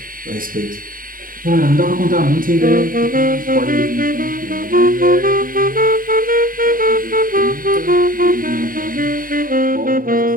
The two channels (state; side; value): late; left; 0.41 ms